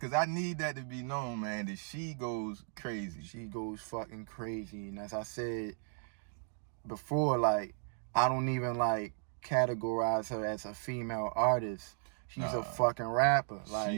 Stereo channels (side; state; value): left; silent; 54 dB below the other